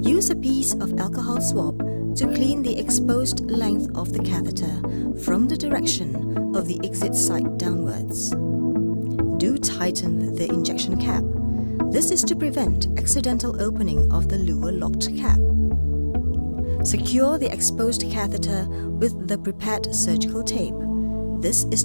Use a piece of alcohol swab to clean the exposed length of the catheter from the direction of the exit site downwards. Do tighten the injection cap. This is to prevent accidental opening of the lower locked cap. Secure the exposed catheter with the prepared surgical tape. This is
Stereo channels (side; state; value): both; inverted; correlation -1.00